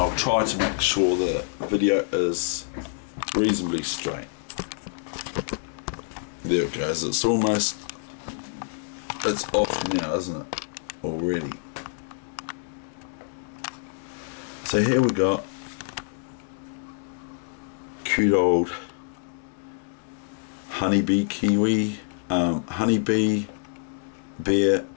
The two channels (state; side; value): silent; right; digital silence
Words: try to make sure the video is reasonably straight. There it goes. It's off now, isn't it? Already. So here we got cute old honeybee kiwi, honeybee bear